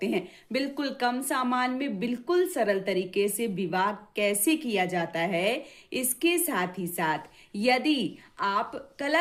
हैं। बिल्कुल कम सामान में बिल्कुल सरल तरीके से विवाह कैसे किया जाता है। इसके साथ ही साथ यदि आप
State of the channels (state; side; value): identical; both; correlation 1.00